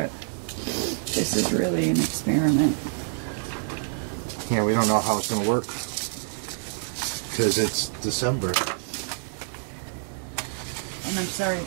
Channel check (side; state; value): left; silent; digital silence